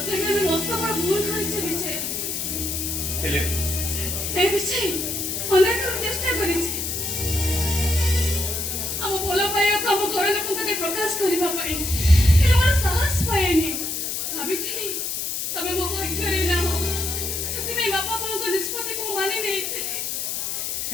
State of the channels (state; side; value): noise; left; hiss, 2 dB below the sound